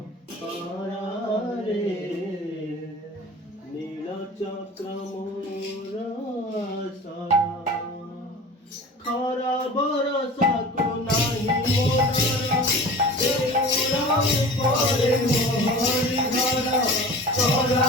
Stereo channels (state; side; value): normal; both; correlation 0.38